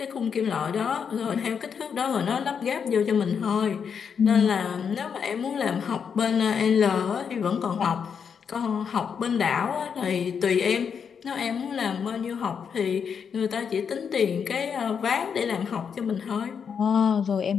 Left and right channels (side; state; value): right; quieter; 6.8 dB